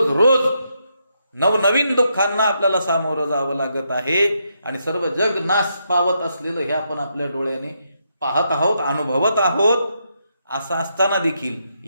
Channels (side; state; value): both; inverted; correlation -0.80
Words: रोज नवनवीन दुःखांना आपल्याला सामोरं जावं लागत आहे. आणि सर्व जग नाश पावत असलेलं हे आपण आपल्या डोळ्याने पाहत आहोत, अनुभवत आहोत. असं असताना देखील